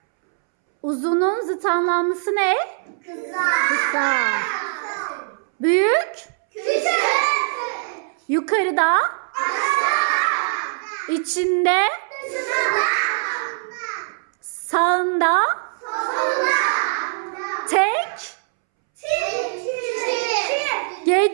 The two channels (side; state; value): left; silent; 64 dB below the other